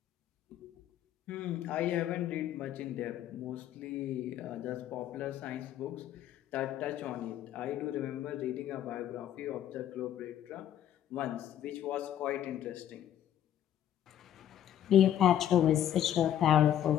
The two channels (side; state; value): right; quieter; 11.0 dB